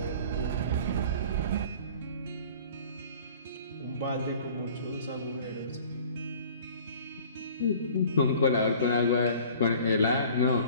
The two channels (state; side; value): inverted; both; correlation -0.48